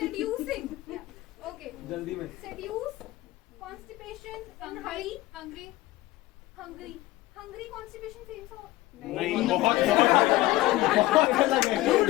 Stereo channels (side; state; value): right; quieter; 17.9 dB